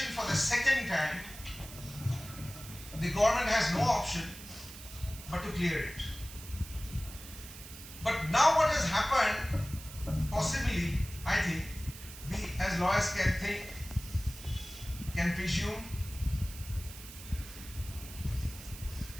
for the second time, the government has no option but to clear it. But now what has happened, possibly, I think, we as lawyers can think, can presume,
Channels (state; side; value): noise; right; hiss, 14 dB below the sound